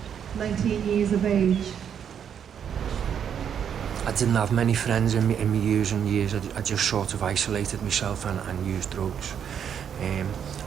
19 years of age. I didn't have many friends in my using years. I just sort of isolated myself and used drugs. And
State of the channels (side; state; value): left; quieter; 8.3 dB